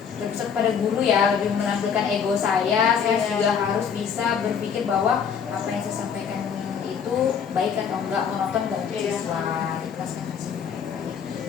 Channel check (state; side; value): quieter; right; 7.1 dB